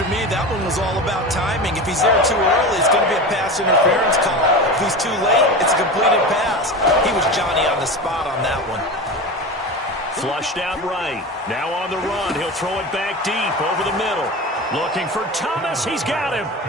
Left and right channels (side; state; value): both; normal; correlation 0.27